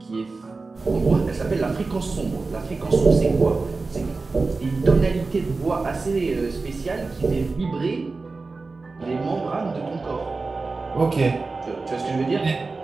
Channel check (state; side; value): quieter; left; 3.9 dB